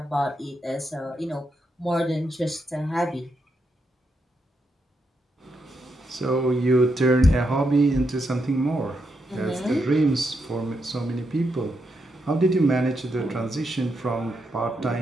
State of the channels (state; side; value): normal; both; correlation 0.82